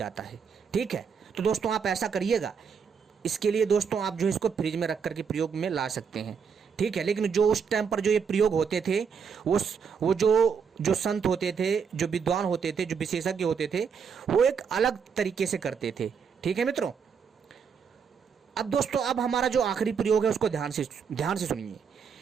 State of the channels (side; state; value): left; quieter; 6.4 dB